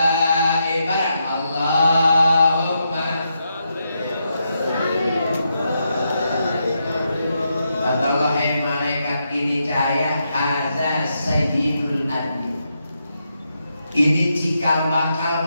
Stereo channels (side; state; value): both; inverted; correlation -0.83